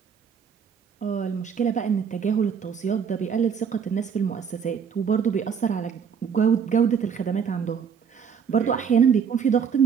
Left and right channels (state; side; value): quieter; left; 6.9 dB